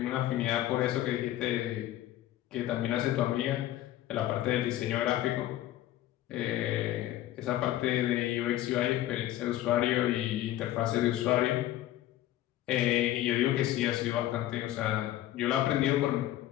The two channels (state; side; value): quieter; right; 13.9 dB